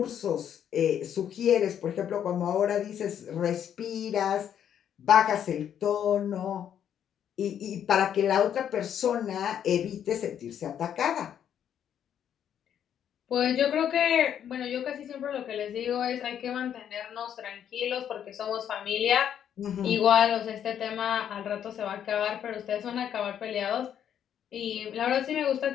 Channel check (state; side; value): quieter; right; 9.3 dB